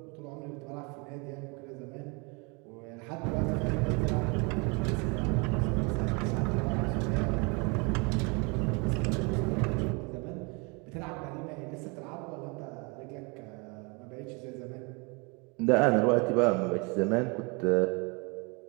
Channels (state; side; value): quieter; left; 30.6 dB